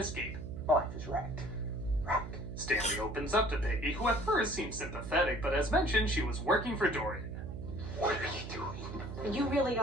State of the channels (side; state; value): right; noise; hum, 8 dB below the sound